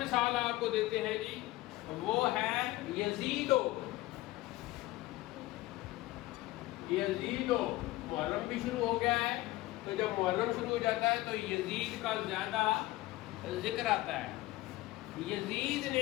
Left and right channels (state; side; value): quieter; right; 18.2 dB